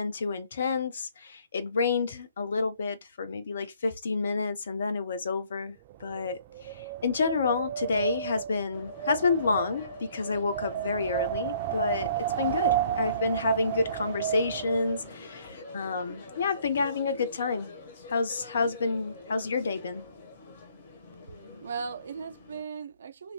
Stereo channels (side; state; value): both; inverted; correlation -0.63